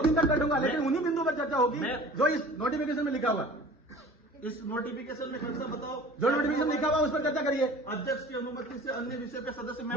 दिन तक बैठूंगा, लेकिन उन्हीं बिंदु पर चर्चा होगी जो इस नोटिफिकेशन में लिखा हुआ। इस नोटिफिकेशन में खर्चा बताओ, जो नोटिफिकेशन लिखा हुआ उस पर चर्चा करिए। अध्यक्ष की अनुमति से अन्य विषय पे सदस्य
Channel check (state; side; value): normal; both; correlation 0.44